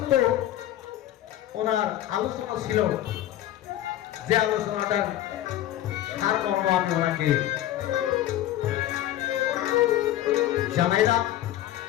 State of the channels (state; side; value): quieter; right; 13.3 dB